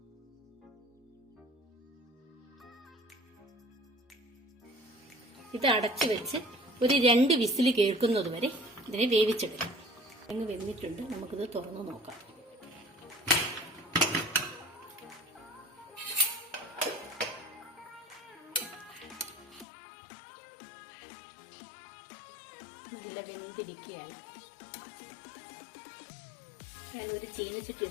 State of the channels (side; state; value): right; drops out; at 19.7 s